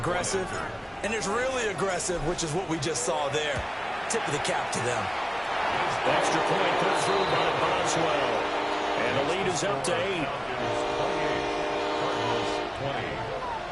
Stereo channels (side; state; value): both; identical; correlation 1.00